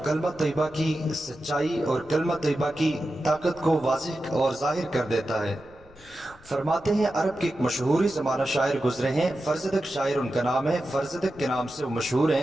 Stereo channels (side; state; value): left; noise; rumble, 25 dB below the sound